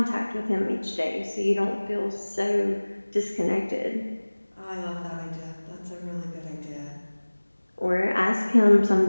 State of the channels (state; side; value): inverted; both; correlation -1.00